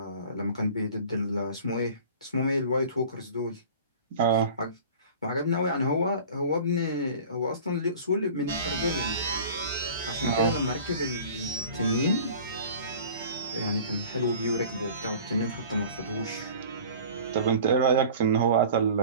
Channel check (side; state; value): both; inverted; correlation -0.43